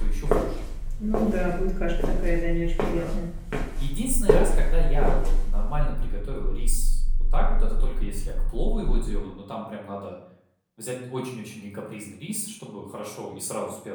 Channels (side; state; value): both; identical; correlation 1.00